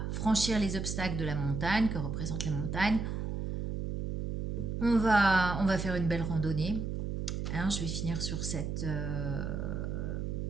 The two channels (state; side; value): noise; right; hum, 3 dB below the sound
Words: franchir les obstacles de la montagne, que représente la montagne. On va faire une belle randonnée. Alors, je vais finir sur cette